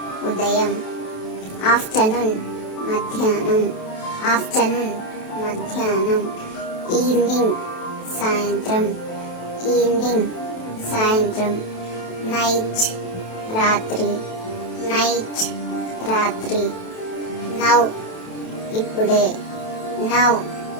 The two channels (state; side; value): late; right; 27 ms